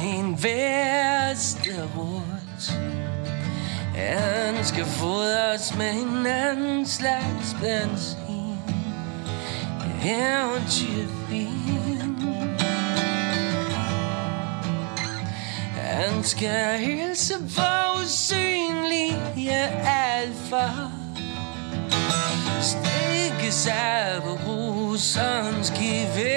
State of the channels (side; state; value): left; quieter; 35.7 dB